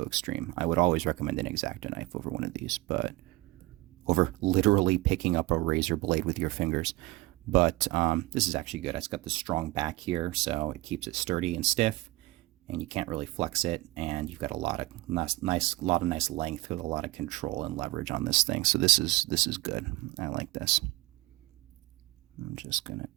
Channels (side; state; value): left; quieter; 20.5 dB